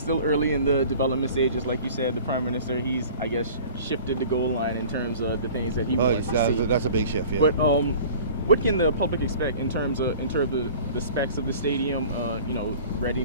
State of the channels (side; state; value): both; inverted; correlation -0.44